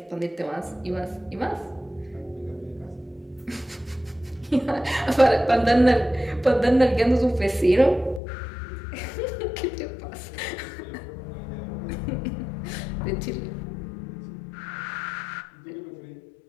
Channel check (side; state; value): right; drops out; at 8.2 s